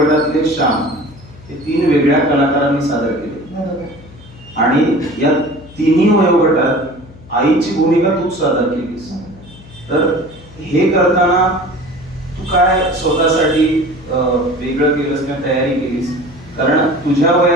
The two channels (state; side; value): noise; left; hum, 21 dB below the sound